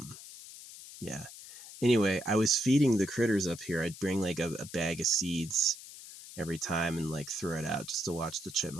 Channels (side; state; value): left; noise; hiss, 15 dB below the sound